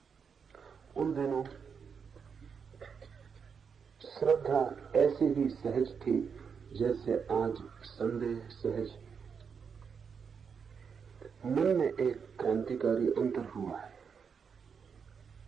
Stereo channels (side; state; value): left; quieter; 6.4 dB